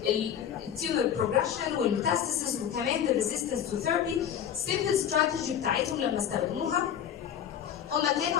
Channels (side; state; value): right; quieter; 9.3 dB